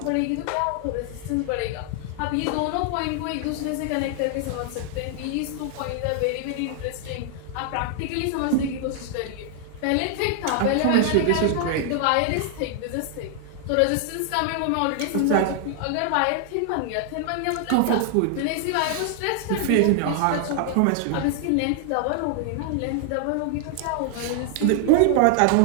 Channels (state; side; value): different; both; correlation 0.00